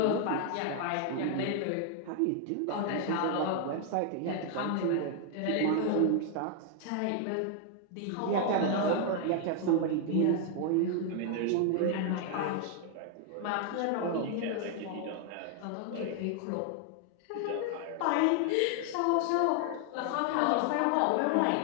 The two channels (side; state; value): both; different; correlation 0.00